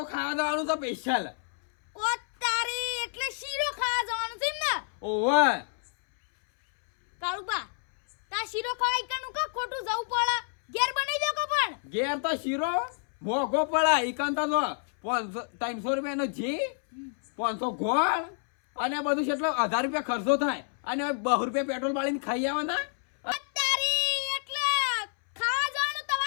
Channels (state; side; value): silent; right; 59 dB below the other